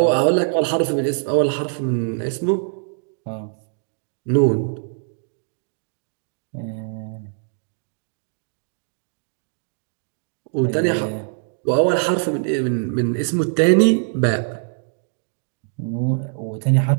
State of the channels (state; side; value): silent; left; digital silence